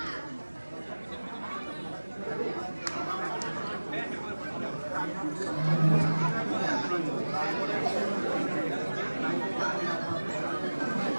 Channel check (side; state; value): both; inverted; correlation -1.00